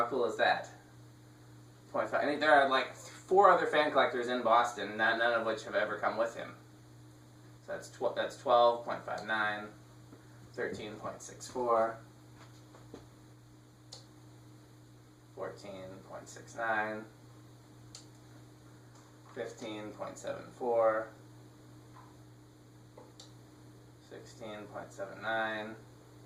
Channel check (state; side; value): identical; both; correlation 1.00